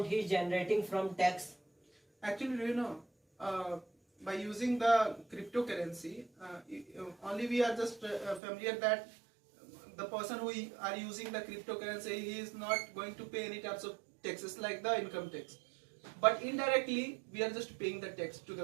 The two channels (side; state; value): left; drops out; at 8.4 s